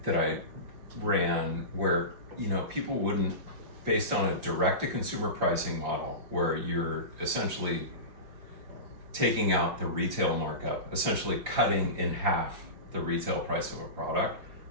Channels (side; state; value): left; late; 5.7 ms